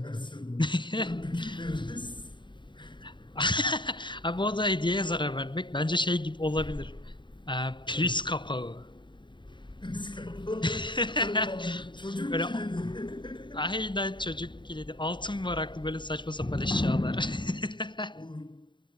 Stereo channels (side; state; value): right; late; 0.23 ms